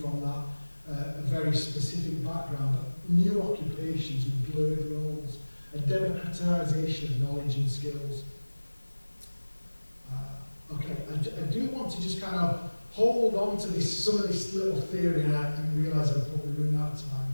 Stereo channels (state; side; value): inverted; both; correlation -1.00